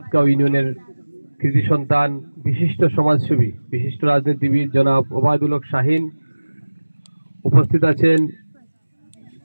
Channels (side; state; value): both; inverted; correlation -1.00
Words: ইউনিয়নের কৃতি সন্তান, বিশিষ্ট সমাজসেবী, বিশিষ্ট রাজনীতিবিদ জনাব ওবায়দুল হক শাহিন, উপস্থিত আছেন